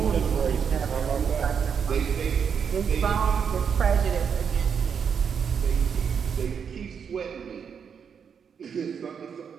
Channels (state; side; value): quieter; left; 7.0 dB